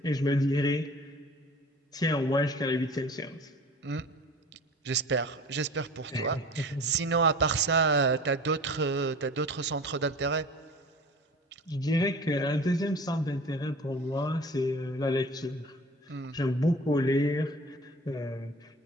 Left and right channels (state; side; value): normal; both; correlation 0.41